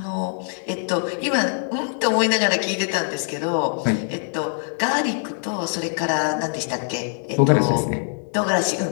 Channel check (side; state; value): right; silent; digital silence